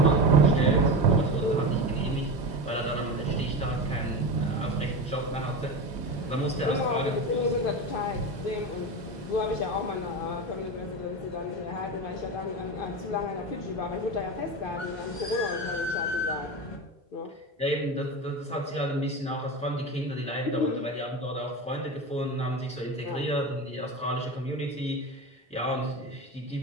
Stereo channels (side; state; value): both; normal; correlation 0.22